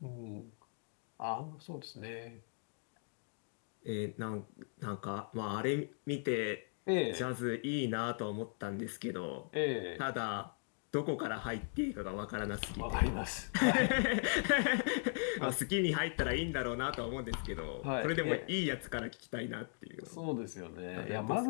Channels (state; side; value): silent; right; 52 dB below the other